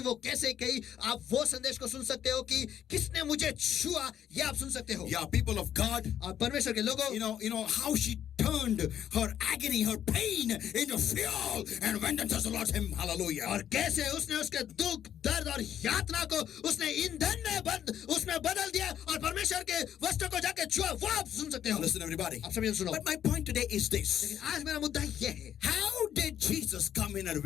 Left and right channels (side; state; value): right; quieter; 10.0 dB